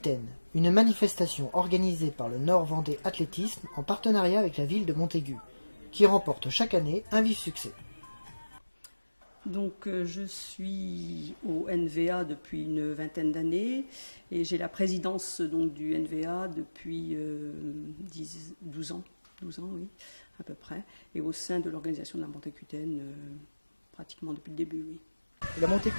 une manifestation organisée par le Nord Vendée Athlétisme en partenariat avec la ville de Montaigu, qui remporte chaque année un vif succès. Donc je suis au NVA depuis une vingtaine d'années et j'ai la présidence donc du NVA depuis 12 ans, oui, à peu près, et au sein de l'organisation de la Montacutaine pratiquement depuis le début, oui. Et la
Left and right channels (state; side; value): inverted; both; correlation -1.00